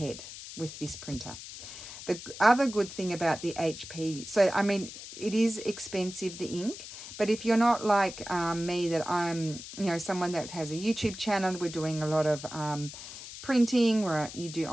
with this printer. The other good thing about the HP, so I mean, it is expensive, the ink, but if you're not like me, that I'm, you know, someone that has a YouTube channel, we're doing a lot of printing, where you do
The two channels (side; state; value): left; noise; hiss, 12 dB below the sound